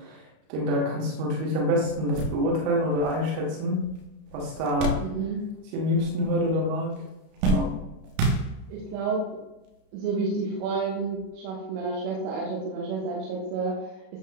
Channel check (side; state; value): left; late; 32 ms